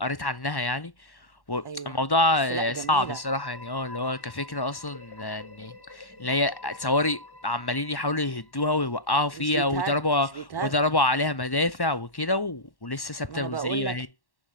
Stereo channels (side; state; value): right; late; 1.1 ms